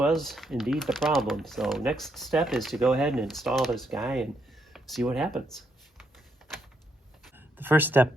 indeed the problem. So next step is to go ahead and install this guy and see what happens. The first step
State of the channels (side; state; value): both; normal; correlation 0.77